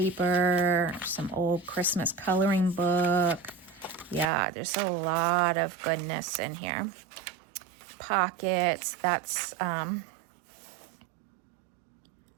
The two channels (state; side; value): drops out; left; at 4.3 s